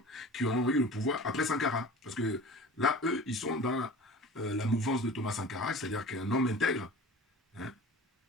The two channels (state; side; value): normal; both; correlation 0.40